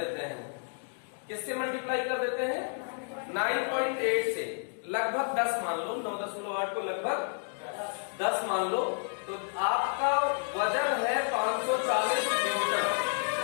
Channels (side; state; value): right; silent; 57 dB below the other